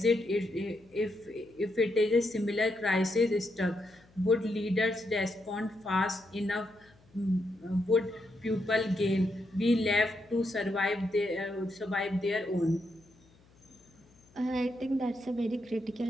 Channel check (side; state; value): left; noise; hum, 29 dB below the sound